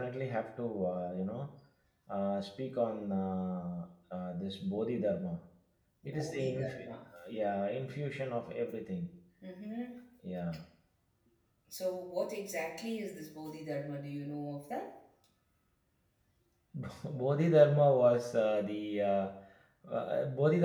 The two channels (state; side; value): identical; both; correlation 1.00